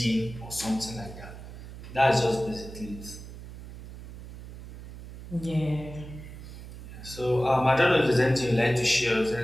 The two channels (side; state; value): right; noise; hum, 13 dB below the sound